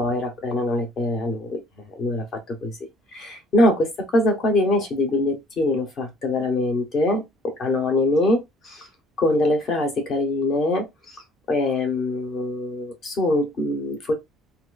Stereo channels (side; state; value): both; normal; correlation 0.58